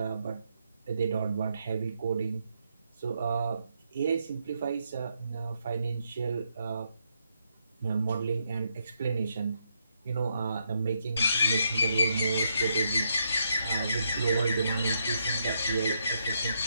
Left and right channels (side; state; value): both; inverted; correlation -0.78